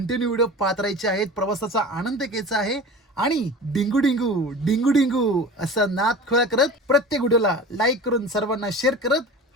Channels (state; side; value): normal; both; correlation 0.36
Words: व्हिडिओ पाहत राहायचे आहेत, प्रवासाचा आनंद घ्यायचा आहे आणि डिंगू डिंगू डिंगू डिंगू असा नाद खोळा करत प्रत्येक व्हिडिओला लाईक करून सर्वांना शेअर करत